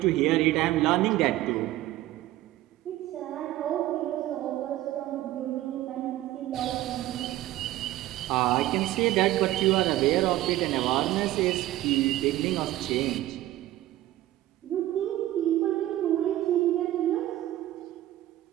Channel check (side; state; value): left; quieter; 15.1 dB